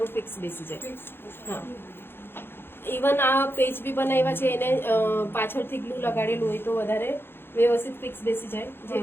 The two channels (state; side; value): late; right; 0.11 ms